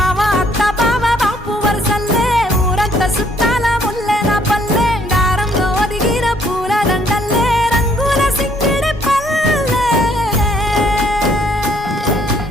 అత్త బావ బాపు వరసల్లే ఊరంతా సుట్టాల ముల్లెన పల్లె దారంలో ఒదిగిన పూల దండల్లే రంగుల సింగిడి పల్లె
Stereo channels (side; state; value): both; normal; correlation 0.65